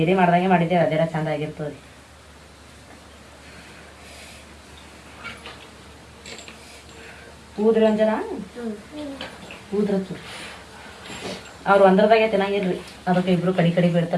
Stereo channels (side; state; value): both; identical; correlation 1.00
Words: ಮಾಡ್ದಂಗೆ ಮಾಡಿದ್ದೇವೆ. ಅದೆಲ್ಲ ಚಂದ ಆಗಿರ್ತದೆ. ಊದ್ರಿ ಒಂದ್ ಜನ ಊದ್ರತ್ತು. ಅವ್ರು ಒಂದ್ರದಾಗೆ ತಿನ್ನಂಗಿಲ್ರಿ. ಅದಕ್ಕೆ ಇಬ್ರು ಕಡಿ ಕಡಿ